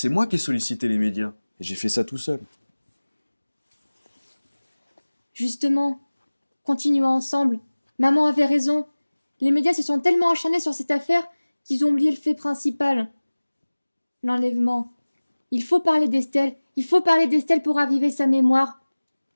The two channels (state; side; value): inverted; both; correlation -1.00